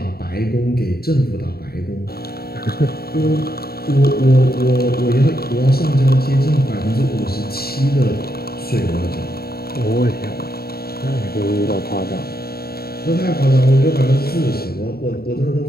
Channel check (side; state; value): right; late; 0.45 ms